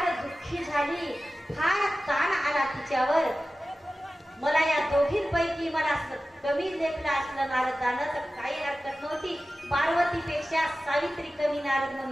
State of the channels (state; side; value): normal; both; correlation 0.95